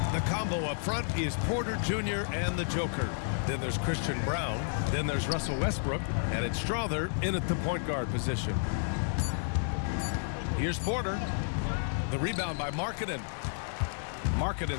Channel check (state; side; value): silent; right; digital silence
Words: The combo up front is Porter Jr. and the Joker. Then there's Christian Brown. Then there's Russell Westbrook. And it's Strother in at the point guard position. Here's Porter. The rebound by Markkanen.